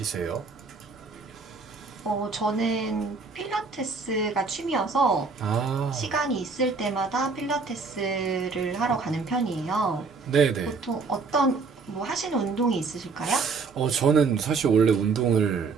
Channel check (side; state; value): left; quieter; 4.5 dB